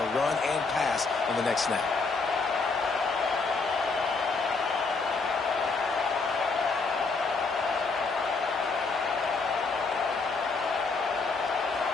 run and pass on the next snap.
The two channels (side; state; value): right; quieter; 4.2 dB